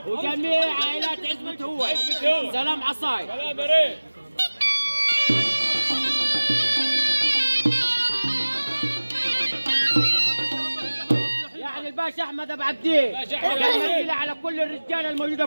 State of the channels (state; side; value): inverted; both; correlation -1.00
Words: وجميع عائلات عزبة هو. سلام عصاي. سلام يا ريت. يعني الباشا احمد ابو عبدين كان على كل الرجاله الموجوده